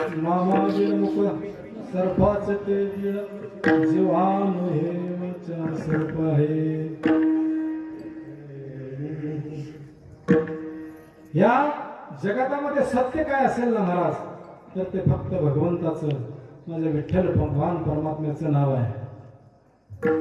मामा बिळमुख सर्पाच ते बिळ जीवान हेचा सर्प आहे. या जगतामध्ये सत्य काय असेल ना महाराज, तर ते फक्त भगवंताचं, माझ्या विठ्ठल भगवान परमात्म्याचं नाव आहे.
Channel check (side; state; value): both; identical; correlation 1.00